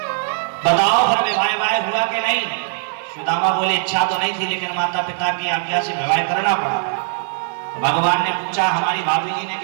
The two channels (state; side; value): silent; left; 66 dB below the other